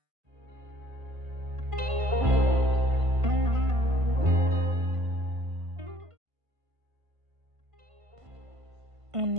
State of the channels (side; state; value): left; late; 1.5 ms